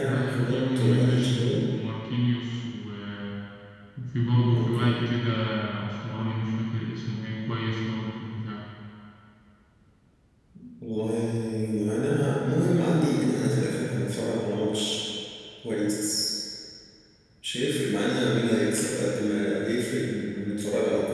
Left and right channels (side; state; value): both; identical; correlation 1.00